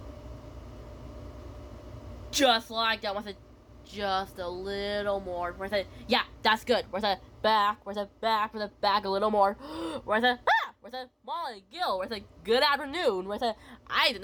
Just like that, where's it just a little more? Where's it? Yeah, that's good. Where's it? Back, where's it? Back, where's it? Back a little more. Where's it? Ah! Where's it? Molly, Gil, where's it? Good afternoon. Where's it? I did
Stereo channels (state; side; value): identical; both; correlation 1.00